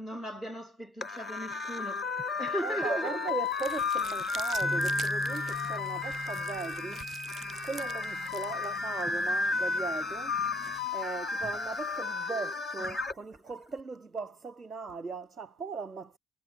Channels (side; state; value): both; normal; correlation 0.60